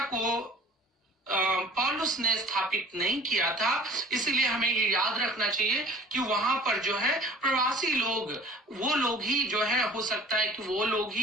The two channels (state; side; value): normal; both; correlation 0.46